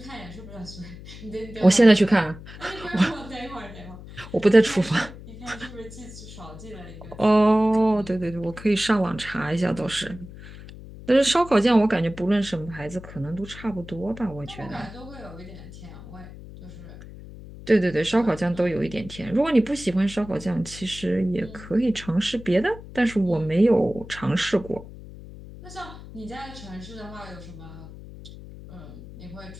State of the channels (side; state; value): left; noise; hum, 15 dB below the sound